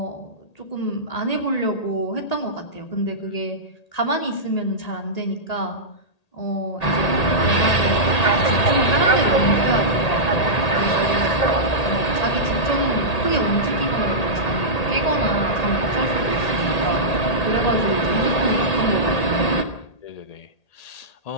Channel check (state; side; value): late; right; 1.8 ms